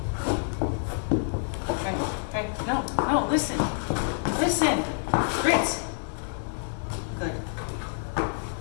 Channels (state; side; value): silent; right; 57 dB below the other